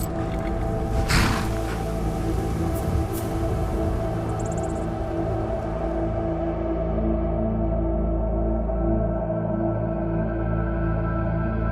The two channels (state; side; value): identical; both; correlation 1.00